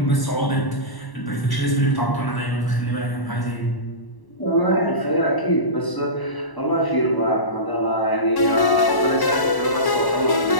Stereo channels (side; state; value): right; late; 1.0 ms